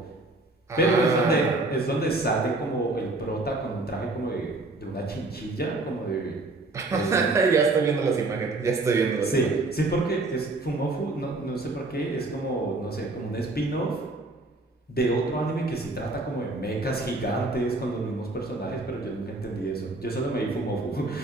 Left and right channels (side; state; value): left; quieter; 3.0 dB